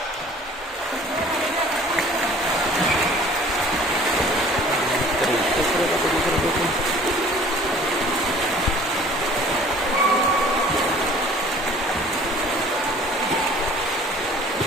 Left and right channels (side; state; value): both; normal; correlation 0.50